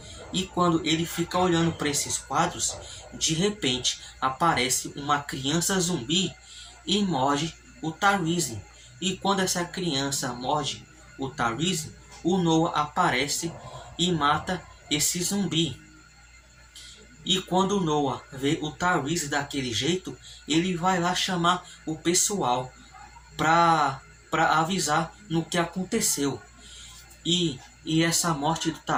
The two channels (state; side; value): identical; both; correlation 1.00